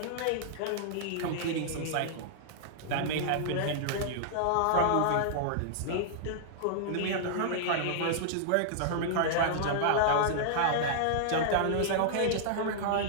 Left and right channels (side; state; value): both; different; correlation -0.01